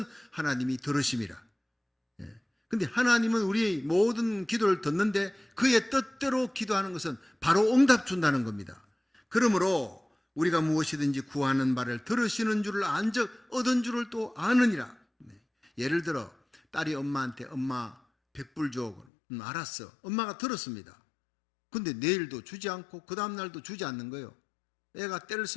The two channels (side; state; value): right; drops out; at 19.1 s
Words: 하나님이 들으심이라. 근데 하나님은 우리의 모든 기도를 듣는데 그의 뜻대로 기도하는 것은 바로 응답 준다는 겁니다. 그러므로 우리가 무엇이든지 구하는 바를 들으시는 줄을 안즉 얻은 줄을 또 아느니라. 예를 들어 딸이 엄마한테 엄마 100불 줘. 알았어. 엄마가 들었습니다. 근데 내일도 주지 않고 그 다음날도 주지 않는 거예요. 애가 때를